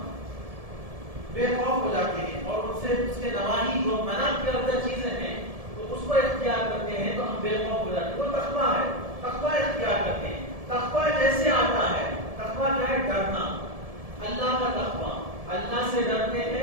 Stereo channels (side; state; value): left; late; 1.7 ms